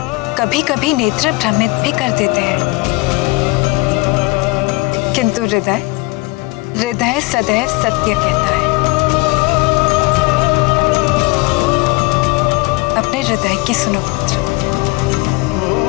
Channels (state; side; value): quieter; right; 24.0 dB